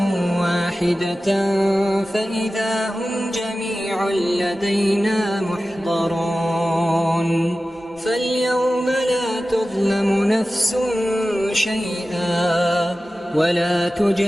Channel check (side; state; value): both; normal; correlation 0.95